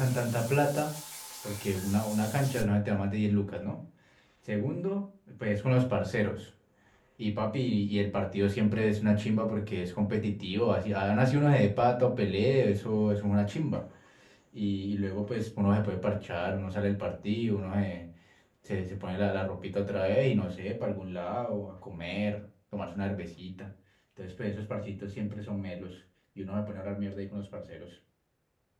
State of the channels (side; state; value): both; identical; correlation 1.00